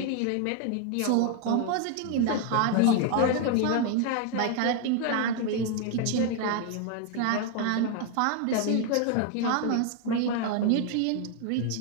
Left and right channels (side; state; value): both; different; correlation 0.00